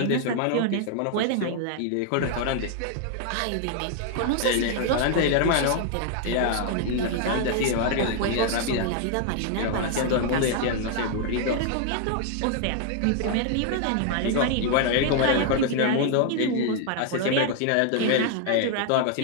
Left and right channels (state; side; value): different; both; correlation 0.00